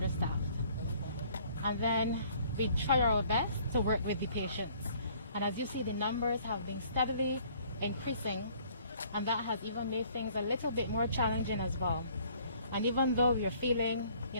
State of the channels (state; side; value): inverted; both; correlation -0.58